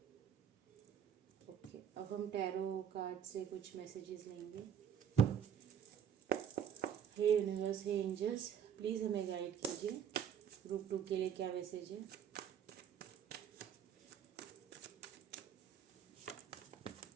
Okay, अब हम टैरो कार्ड से कुछ मैसेजेस लेंगे। हे यूनिवर्स, हे एंजल्स, प्लीज़ हमें गाइड कीजिए। ग्रुप 2 के लिए क्या मैसेज है।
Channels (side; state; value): left; quieter; 8.9 dB